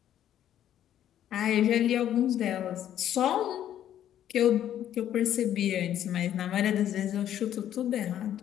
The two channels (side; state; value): right; quieter; 11.0 dB